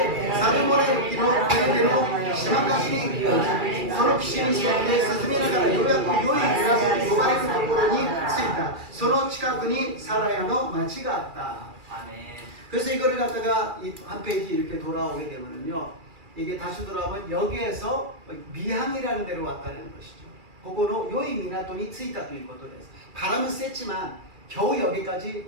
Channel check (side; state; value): left; late; 2.4 ms